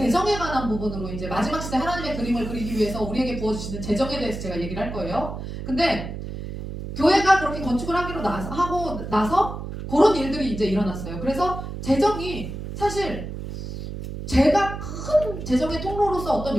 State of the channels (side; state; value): right; noise; hum, 8 dB below the sound